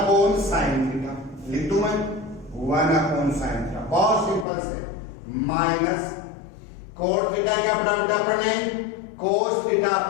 साइन थीटा। लिख दूं मैं 1 अपॉन साइन थीटा, बहुत सिंपल से, माइनस कोट थीटा क्या पढ़ा बेटा अपन ने कोस थीटा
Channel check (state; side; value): drops out; right; at 4.5 s